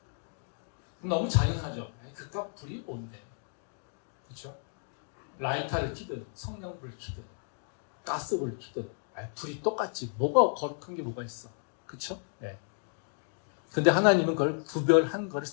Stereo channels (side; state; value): right; silent; 56 dB below the other